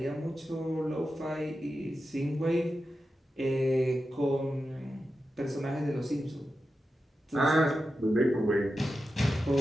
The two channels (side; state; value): both; normal; correlation 0.91